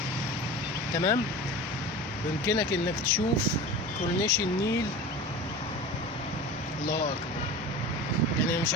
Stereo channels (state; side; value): normal; both; correlation 0.33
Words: تمام. ويمكنك انك تشوف كورنيش النيل. الله اكبر. يعني مش